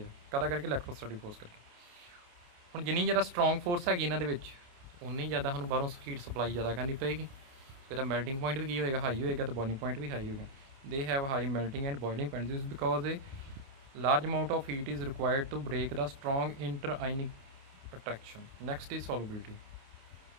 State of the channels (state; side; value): late; left; 29 ms